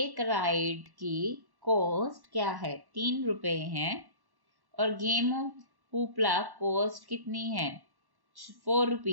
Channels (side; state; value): left; late; 1.1 ms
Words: राइड की कॉस्ट क्या है? 3 रुपए है और गेम ऑफ हुपला कॉस्ट कितनी है? 4